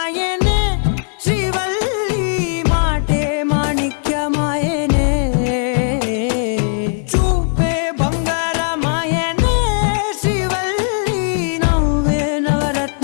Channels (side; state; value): right; silent; digital silence